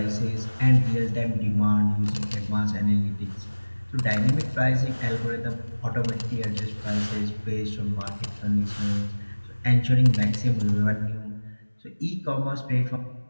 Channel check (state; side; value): inverted; both; correlation -1.00